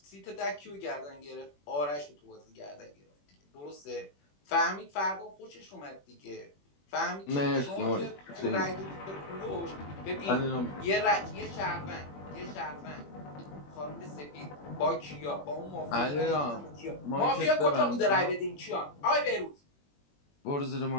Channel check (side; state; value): right; late; 21 ms